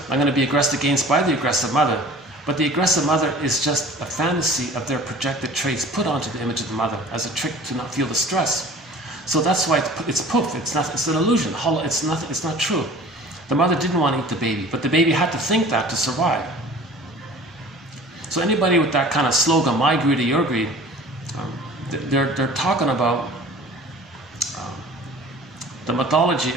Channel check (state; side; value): normal; both; correlation 0.45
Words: I'm going to be aggressed against by the aggressive mother. But the aggressive mother is just a fantasy of their projected traits put onto the image of the mother as a trick to not feel the stress. So that's why it's poof. It's an illusion. It's not true. The mother didn't want to eat the baby, but the baby had to think that to survive. So anybody with that kind of slogan, my greed or your greed, they're talking about the mythology